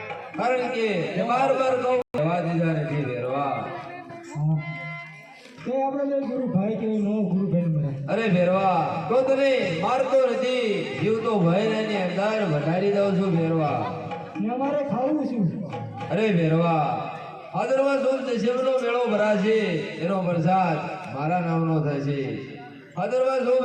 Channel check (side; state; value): both; identical; correlation 1.00